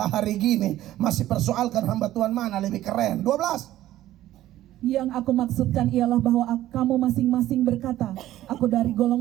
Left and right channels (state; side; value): quieter; left; 14.1 dB